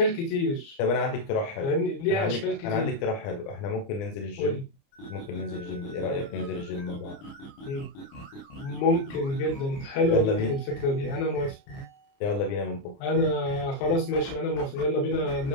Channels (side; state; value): right; late; 29 ms